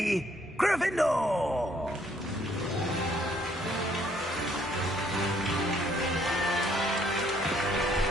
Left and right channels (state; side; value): normal; both; correlation 0.66